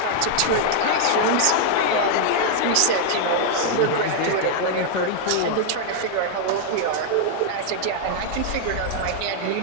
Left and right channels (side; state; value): both; different; correlation -0.01